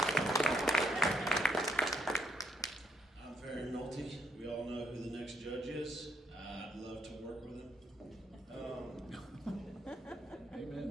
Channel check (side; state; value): both; normal; correlation 0.72